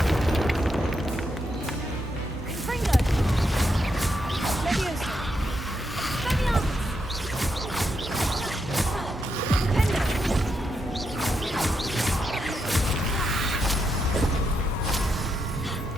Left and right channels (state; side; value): normal; both; correlation 0.82